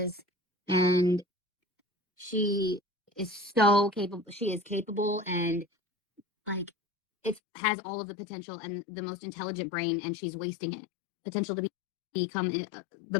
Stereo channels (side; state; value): right; drops out; at 7.4 s